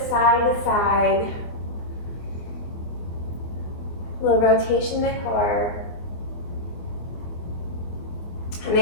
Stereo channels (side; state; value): right; late; 24 ms